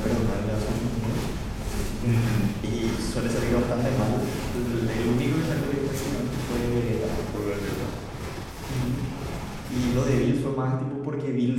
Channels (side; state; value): both; identical; correlation 1.00